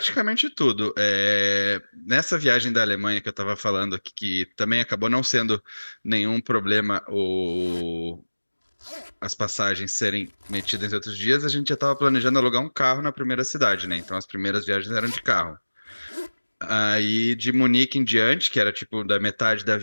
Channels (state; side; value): inverted; both; correlation -1.00